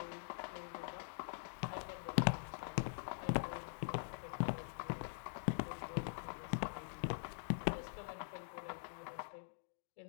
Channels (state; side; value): silent; right; digital silence